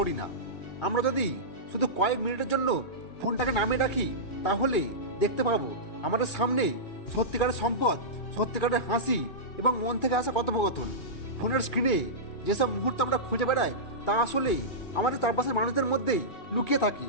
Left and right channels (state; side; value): late; right; 2.4 ms